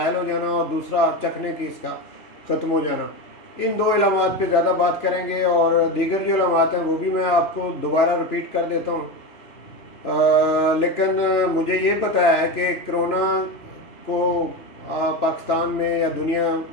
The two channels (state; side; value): late; right; 2.9 ms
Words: हो जाना और दूसरा चखने की इसका ख़त्म हो जाना, इन दो अलामत पे ज़्यादा बात करेंगे। और दीगर जो अलामत हैं वो भी मैं आपको दोबारा रिपीट कर देता हूँ। लेकिन मुझे ये पता है कि कोरोना को पाकिस्तान में या